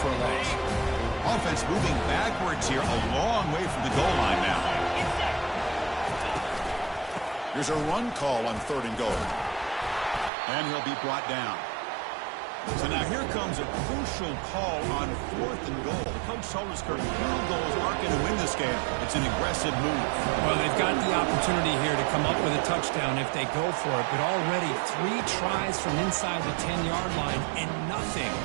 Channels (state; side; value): drops out; left; at 10.3 s